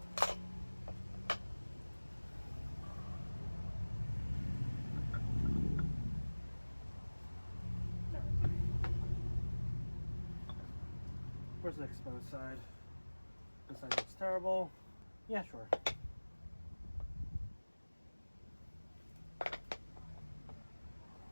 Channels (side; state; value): both; inverted; correlation -1.00